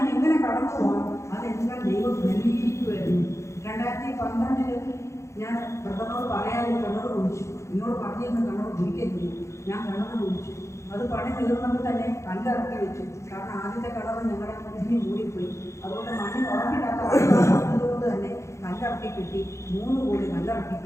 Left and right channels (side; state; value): right; late; 0.14 ms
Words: എങ്ങനെ കടന്നു പോകാം, അതെല്ലാം ദൈവം നൽകിയിരിക്കുമായിരുന്നു. 2012 ഞാൻ ബ്രദറിനോട് പറയാതെ കിണർ കുഴിച്ചു. എന്നോട് പറഞ്ഞിരുന്ന കിണർ കുഴിക്കരുത്. ഞാൻ കിണർ കുഴിച്ചു. അത് പണി തീർന്നപ്പോൾ തന്നെ കല്ലിറക്കി വെച്ചു. കാരണം ആദ്യത്തെ കിണർ ഞങ്ങളുടെ ഇതിന് മൂടിപ്പോയി. അതുകൊണ്ട് മണ്ണിൽ ഉറപ്പില്ലാത്ത അതുകൊണ്ട് തന്നെ കല്ലിറക്കി കിട്ടി. 3 കോടി കല്ലിറക്കി